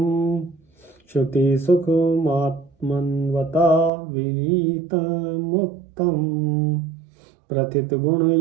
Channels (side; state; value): left; drops out; at 3.9 s